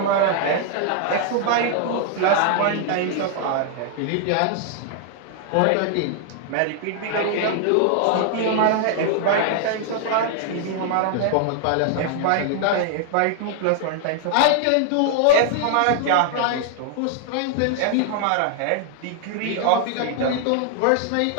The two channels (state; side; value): different; both; correlation 0.00